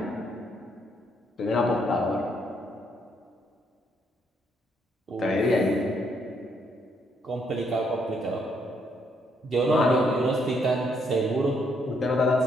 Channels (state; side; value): normal; both; correlation 0.73